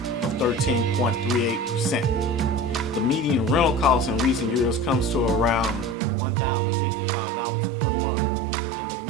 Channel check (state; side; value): drops out; left; at 6.0 s